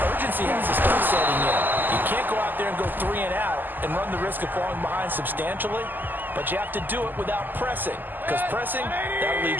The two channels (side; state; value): left; late; 0.089 ms